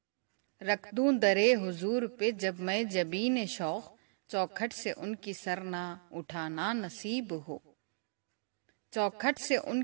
رکھ دوں درے حضور پہ جب میں جبین شوق، چوکھٹ سے ان کی سر نہ اٹھانا نصیب ہو، چوکھٹ سے ان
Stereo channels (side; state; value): left; silent; digital silence